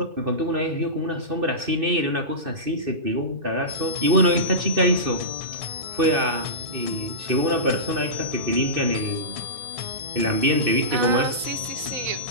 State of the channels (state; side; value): late; left; 2.6 ms